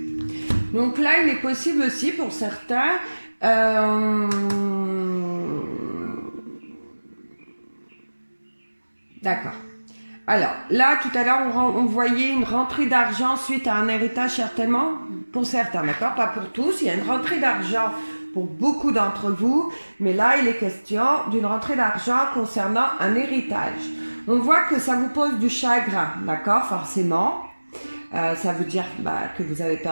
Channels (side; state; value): both; inverted; correlation -1.00